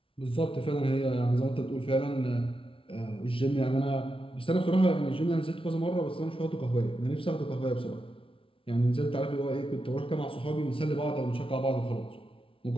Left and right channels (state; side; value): late; right; 0.26 ms